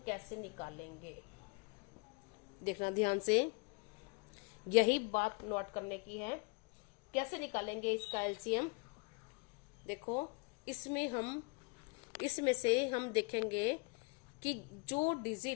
कैसे निकालेंगे, देखना ध्यान से, यही बात नोट करने की है। कैसे निकालेंगे इसका एलसीएम, देखो इसमें से हम देखेंगे कि जो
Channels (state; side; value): quieter; right; 30.9 dB